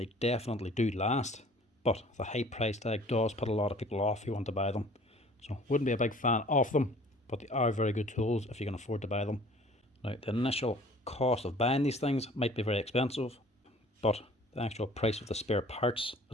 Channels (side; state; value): both; normal; correlation 0.51